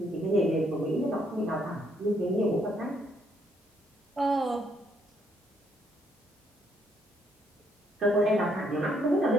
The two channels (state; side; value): normal; both; correlation 0.72